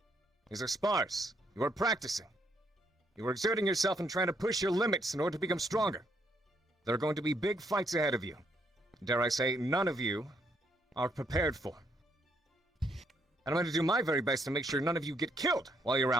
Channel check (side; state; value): both; normal; correlation 0.73